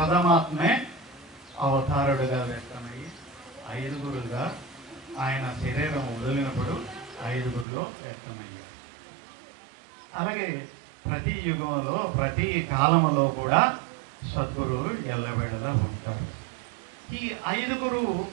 అవతారుడుగా వ్యక్తమయ్యి 5 ఆయన శరీరం వదిలినప్పుడు 5 వ్యక్తమయ్యారు. అలాగే ప్రతి యుగంలో, ప్రతి కాలంలో కూడా సద్గురువు ఎల్లవేళలా ఉంటారు. ఈ 5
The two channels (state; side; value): drops out; left; at 7.7 s